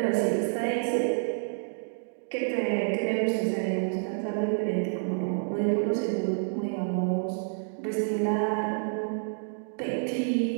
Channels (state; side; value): silent; left; digital silence